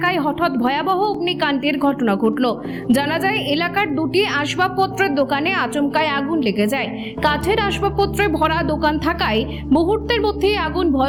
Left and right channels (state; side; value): noise; left; hum, 28 dB below the sound